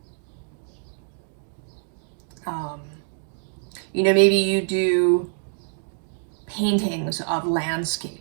you know, maybe you do paintings of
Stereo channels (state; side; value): silent; left; digital silence